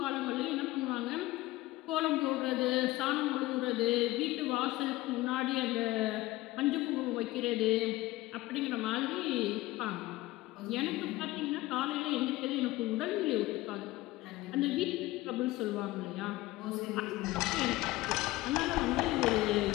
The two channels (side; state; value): right; quieter; 18.1 dB